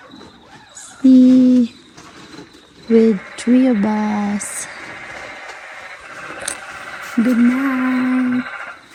See, with 3 of us. Good night.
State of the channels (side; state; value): both; identical; correlation 1.00